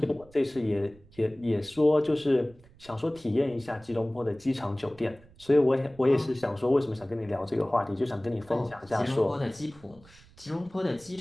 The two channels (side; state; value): right; noise; rumble, 25 dB below the sound